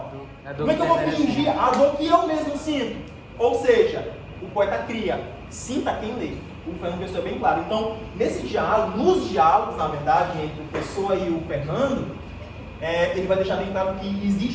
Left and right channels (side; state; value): both; identical; correlation 1.00